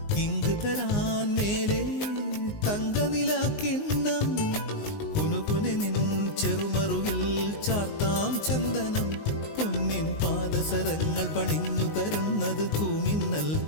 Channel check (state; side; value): late; right; 19 ms